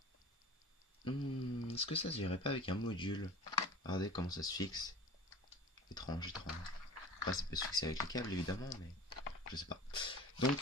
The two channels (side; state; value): both; normal; correlation 0.38